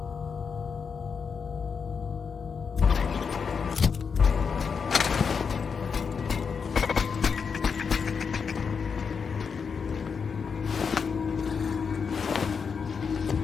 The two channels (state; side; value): quieter; right; 5.9 dB